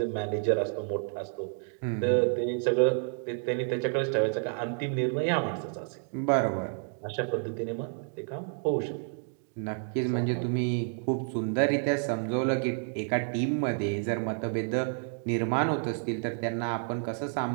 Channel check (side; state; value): left; silent; 58 dB below the other